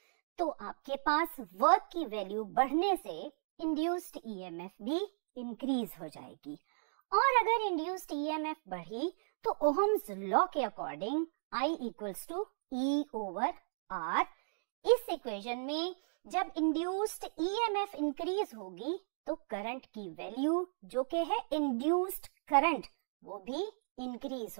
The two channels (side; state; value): left; silent; digital silence